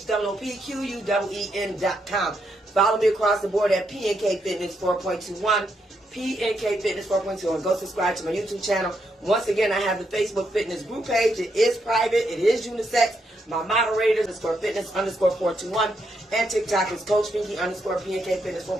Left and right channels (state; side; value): normal; both; correlation 0.79